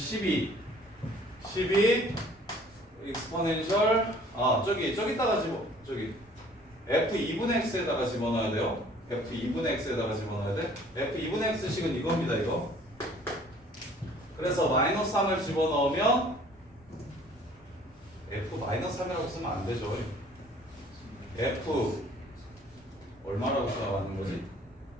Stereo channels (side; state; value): right; noise; rumble, 28 dB below the sound